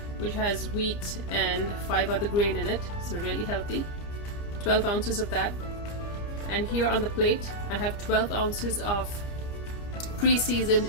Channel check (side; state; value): right; late; 30 ms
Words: which has wheat and 5 other grain in it, so really healthy. 12 ounces of that. And here on the plate I have 12 ounces of